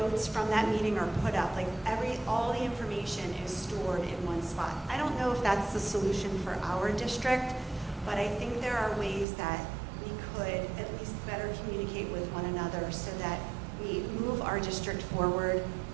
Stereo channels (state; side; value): drops out; left; at 9.2 s